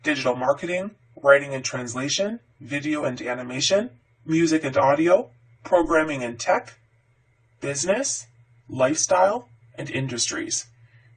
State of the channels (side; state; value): both; identical; correlation 1.00